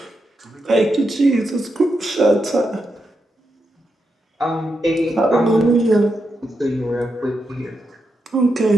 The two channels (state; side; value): normal; both; correlation 0.85